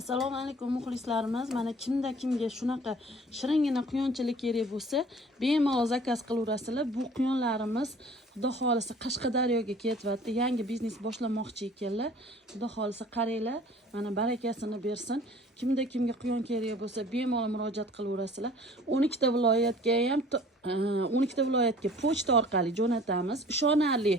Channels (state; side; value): normal; both; correlation 0.49